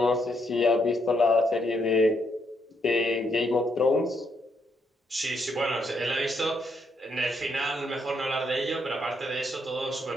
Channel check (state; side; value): normal; both; correlation 0.75